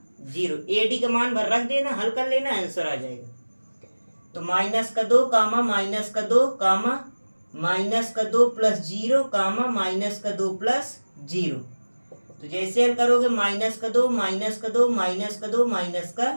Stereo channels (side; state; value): both; inverted; correlation -1.00